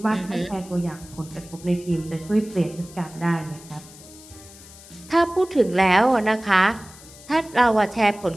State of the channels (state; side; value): noise; left; hiss, 20 dB below the sound